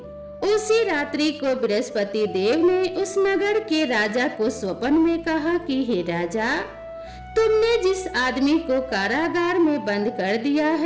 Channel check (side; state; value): both; identical; correlation 1.00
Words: उसी रात्रि को बृहस्पति देव ने उस नगर के राजा को स्वप्न में कहा कि हे राजा, तुमने जिस आदमी को कारागार में बंद कर दिया